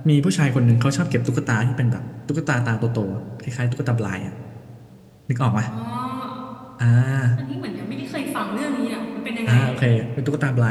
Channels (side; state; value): both; identical; correlation 1.00